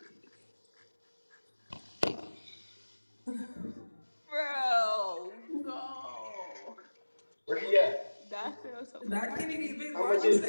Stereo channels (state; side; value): inverted; both; correlation -1.00